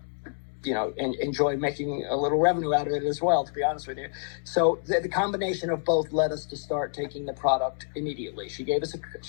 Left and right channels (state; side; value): silent; right; digital silence